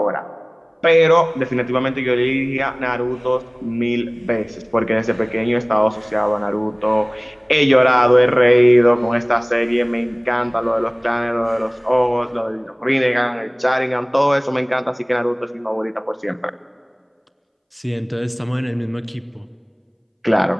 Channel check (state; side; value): identical; both; correlation 1.00